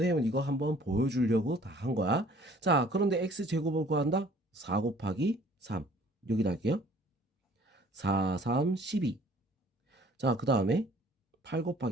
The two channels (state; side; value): normal; both; correlation 0.54